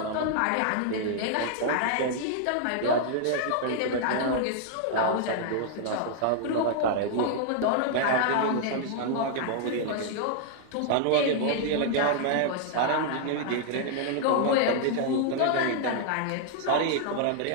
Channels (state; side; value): different; both; correlation 0.00